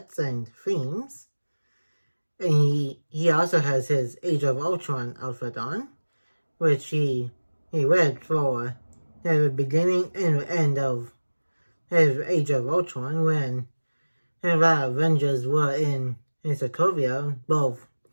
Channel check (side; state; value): both; inverted; correlation -1.00